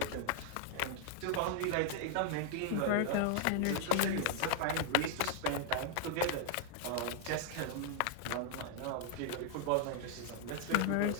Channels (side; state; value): both; different; correlation 0.00